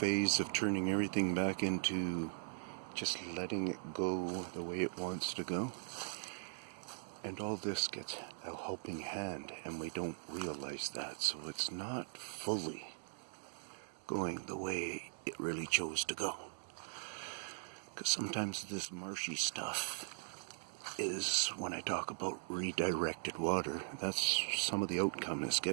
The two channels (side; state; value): left; silent; digital silence